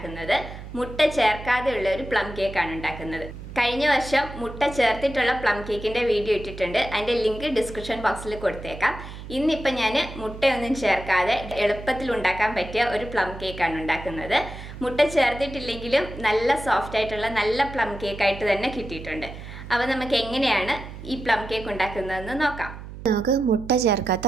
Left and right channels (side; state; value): right; noise; hum, 12 dB below the sound